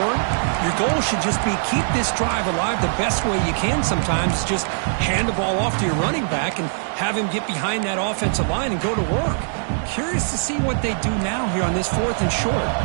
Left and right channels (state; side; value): silent; left; digital silence